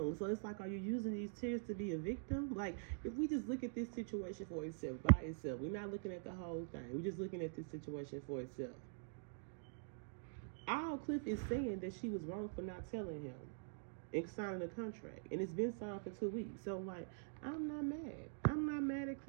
So it's like, are you using these tears to be a victim? Like, if we just look at this situation for itself, by itself, we're not looking at the whole thing. We're just looking at this situation for itself. All Cliff is saying that she was wrong for not telling him and signing the contract, and it's been signed for 2 weeks. So, like, I'm not mad. I'm not mad at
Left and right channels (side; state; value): left; silent; digital silence